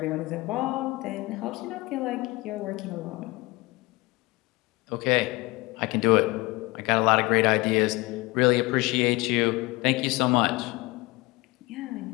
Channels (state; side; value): quieter; right; 22.7 dB